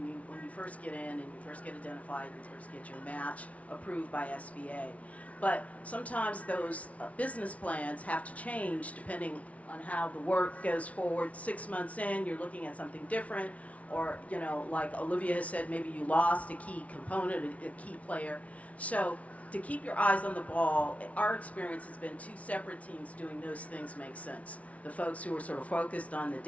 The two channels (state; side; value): late; right; 0.066 ms